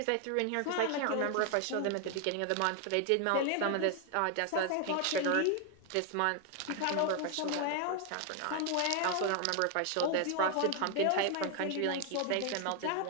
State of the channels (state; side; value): different; both; correlation 0.00